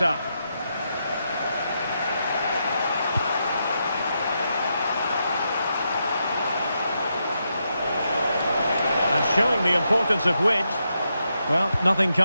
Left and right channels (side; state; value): both; inverted; correlation -0.83